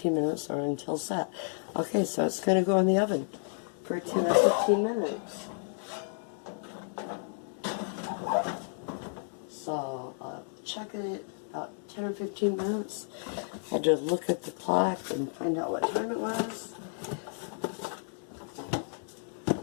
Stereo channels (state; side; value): silent; right; 57 dB below the other